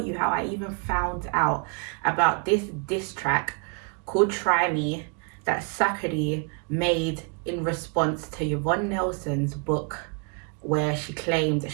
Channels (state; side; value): quieter; left; 36.3 dB